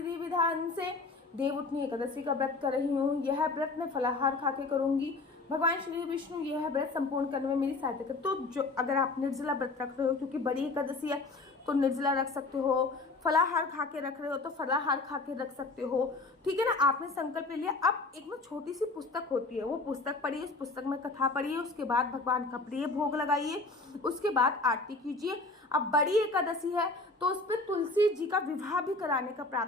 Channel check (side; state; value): right; quieter; 3.5 dB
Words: विधान से देवउठनी एकादशी का व्रत कर रही हूँ। यह व्रत मैं फलाहार खा के करूंगी। भगवान श्री विष्णु यह व्रत संपूर्ण करने में मेरी सहायता कर। तो जो अगर आप निर्जला व्रत रख रहे हो, क्योंकि बड़ी एकादशी है तो निर्जला रख सकते हो, फलाहार खा के रख रहे हो तो फलाहार खा के रख सकते हो, ठीक है ना। आपने संकल्प ले लिया। अब एक ना छोटी सी पुस्तक होती है, वो पुस्तक पढ़िए, उस पुस्तक में कथा पढ़िए, उसके बाद भगवान का प्रिय भोग लगाइए, उसके बाद आरती कीजिए। अब बड़ी एकादशी है तो उस पर तुलसी जी का विवाह भी कराने का